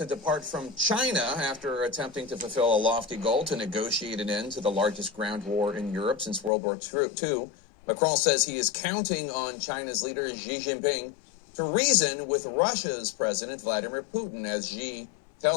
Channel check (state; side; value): drops out; right; at 6.5 s